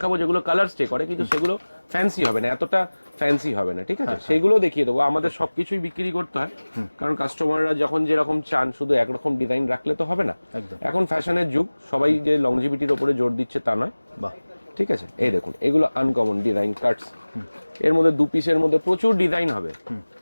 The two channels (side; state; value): both; inverted; correlation -1.00